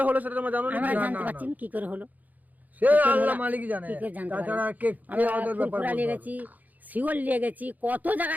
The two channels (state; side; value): late; left; 0.080 ms